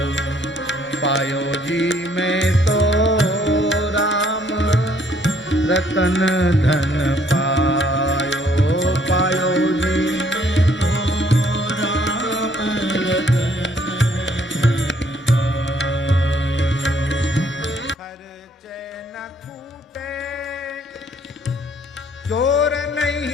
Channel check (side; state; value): both; normal; correlation 0.64